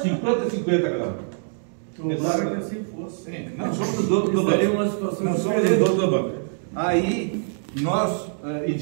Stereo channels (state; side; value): silent; left; digital silence